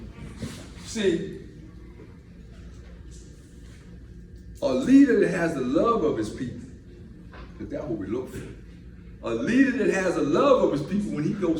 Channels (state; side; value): identical; both; correlation 1.00